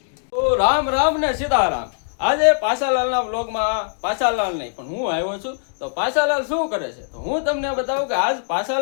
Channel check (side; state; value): right; silent; digital silence